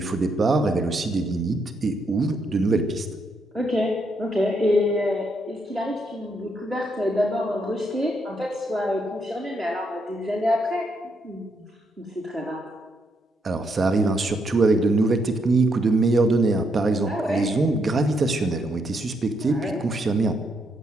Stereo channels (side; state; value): both; normal; correlation 0.77